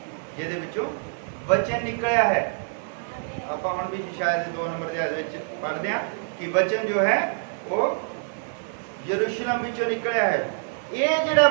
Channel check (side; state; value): left; silent; digital silence